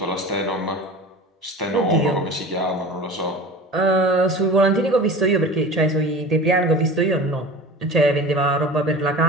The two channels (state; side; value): normal; both; correlation 0.36